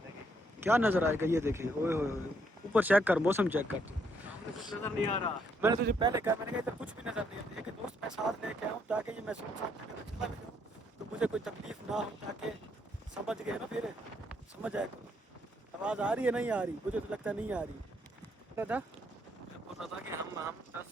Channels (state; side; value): normal; both; correlation 0.72